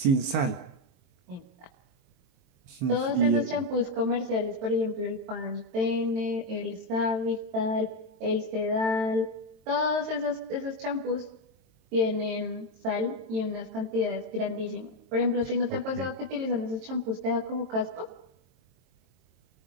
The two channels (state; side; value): late; left; 22 ms